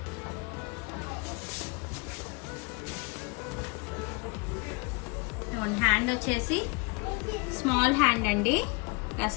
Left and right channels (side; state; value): right; quieter; 29.8 dB